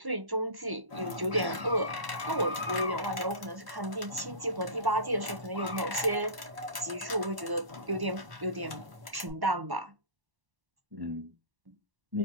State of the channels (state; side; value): late; left; 1.1 ms